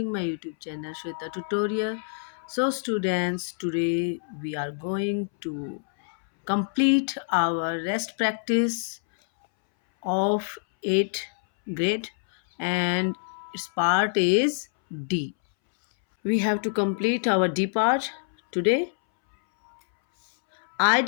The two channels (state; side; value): silent; right; 61 dB below the other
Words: my YouTube channel Shweta Tutorial. So students, today we are going to complete our rest practice of 8th grade and its part is D. We have to complete our D part today.